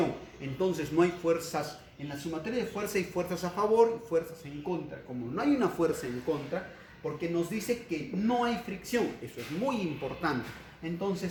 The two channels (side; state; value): both; identical; correlation 1.00